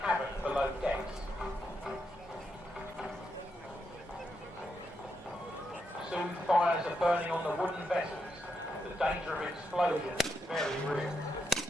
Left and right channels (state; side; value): normal; both; correlation 0.83